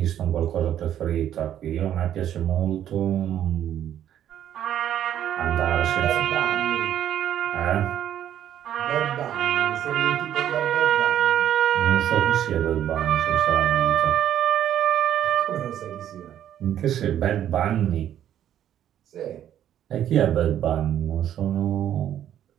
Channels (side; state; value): left; quieter; 10.7 dB